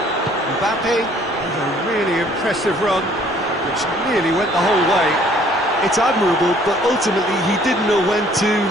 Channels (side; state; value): right; noise; rumble, 26 dB below the sound